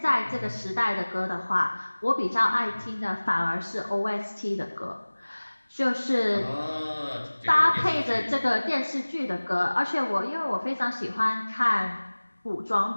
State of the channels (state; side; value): inverted; both; correlation -1.00